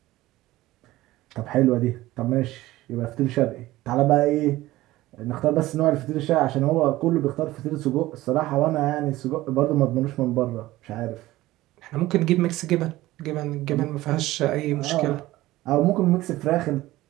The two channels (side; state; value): left; quieter; 17.1 dB